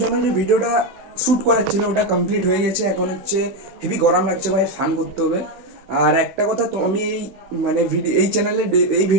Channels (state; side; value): late; left; 15 ms